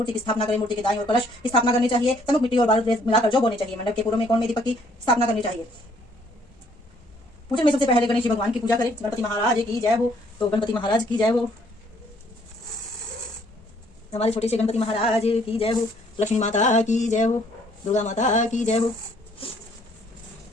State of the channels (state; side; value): normal; both; correlation 0.64